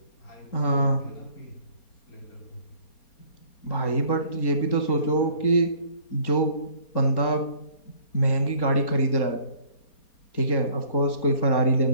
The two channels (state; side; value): late; right; 4.3 ms